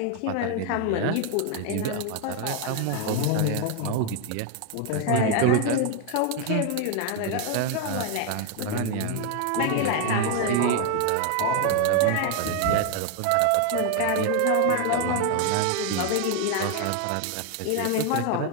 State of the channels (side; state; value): both; different; correlation 0.01